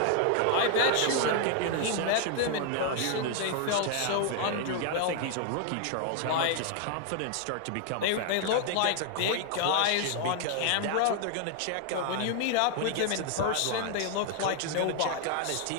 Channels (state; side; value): different; both; correlation 0.00